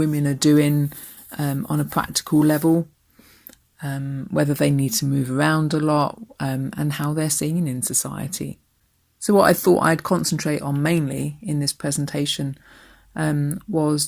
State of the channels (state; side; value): identical; both; correlation 1.00